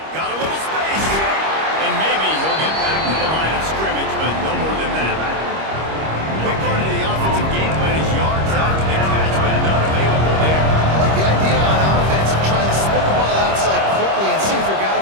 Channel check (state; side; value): late; left; 25 ms